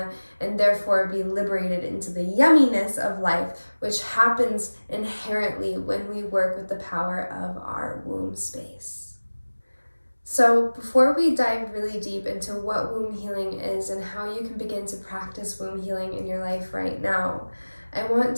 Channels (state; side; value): inverted; both; correlation -1.00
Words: and therefore be liberated into the yumminess of life, which happens inherently when we work with the power of our womb space. So before we dive really deep into what womb healing is and how you can begin to practice womb healing in your life right now, I want